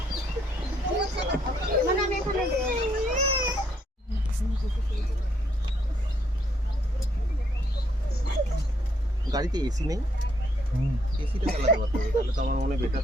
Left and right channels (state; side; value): normal; both; correlation 0.71